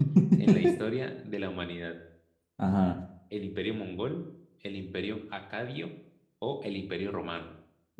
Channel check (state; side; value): identical; both; correlation 1.00